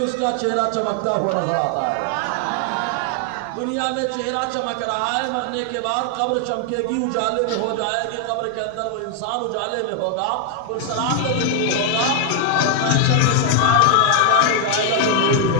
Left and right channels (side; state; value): both; different; correlation 0.00